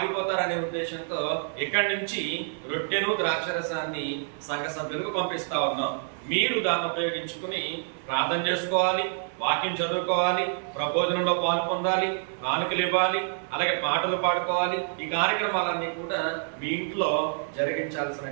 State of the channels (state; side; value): silent; left; 60 dB below the other